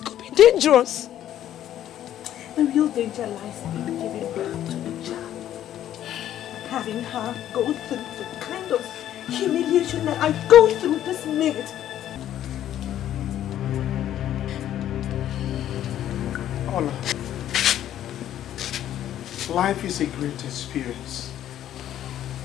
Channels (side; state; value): right; quieter; 11.6 dB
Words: could be dangerous. The real danger lies in giving birth to a child. Having her go through the kind of humiliation that I go through this minute. Ola, life is a great experience.